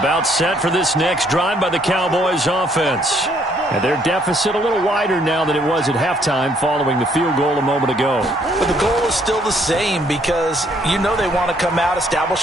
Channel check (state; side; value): normal; both; correlation 0.67